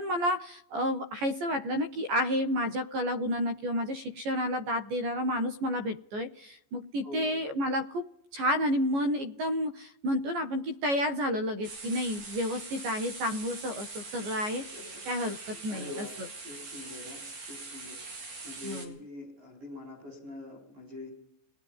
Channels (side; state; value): left; late; 14 ms